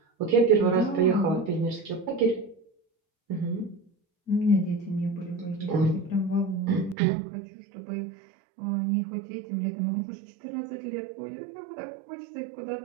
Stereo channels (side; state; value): left; drops out; at 7.0 s